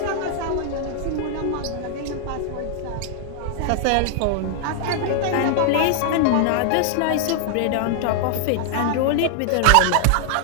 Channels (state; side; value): different; both; correlation 0.00